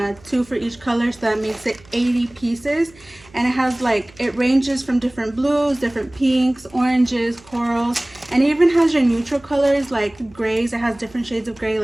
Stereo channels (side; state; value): right; noise; hum, 26 dB below the sound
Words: 2 for each color, so that makes it 80 pieces. And it has like, it ranges from different blues, different pinks, oranges, corals, and it even has your neutral colors like grays. It has different shades of gray,